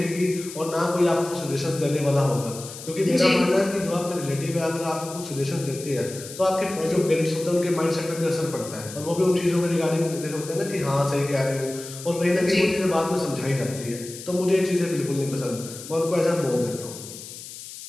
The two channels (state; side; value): noise; left; hiss, 13 dB below the sound